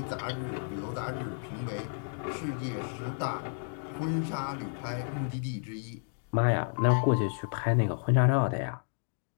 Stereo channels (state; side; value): silent; right; digital silence